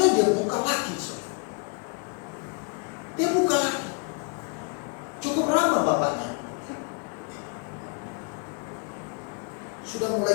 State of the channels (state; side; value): quieter; right; 36.1 dB